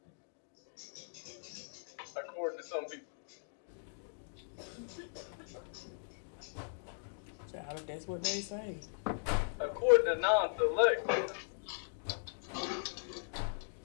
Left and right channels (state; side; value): silent; right; digital silence